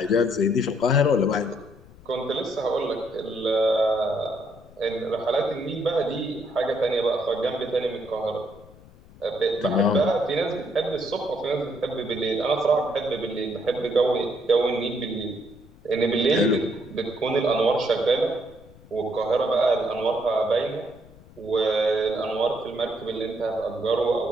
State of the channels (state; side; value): noise; left; rumble, 23 dB below the sound